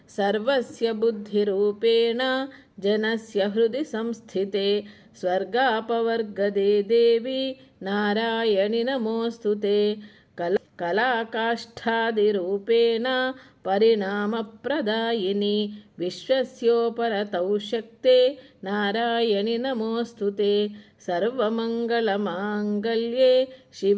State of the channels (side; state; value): both; identical; correlation 1.00